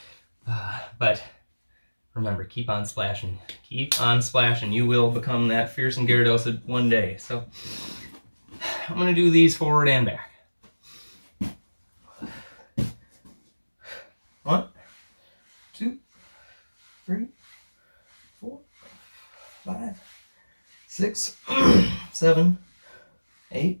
But remember, keep on splashing. Keep on splashing. You will become that fearsome Gyarados one day. So I'm going to do these forward and back. 1, 2, 3, 4, 5, 6, 7, 8,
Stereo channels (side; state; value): both; inverted; correlation -1.00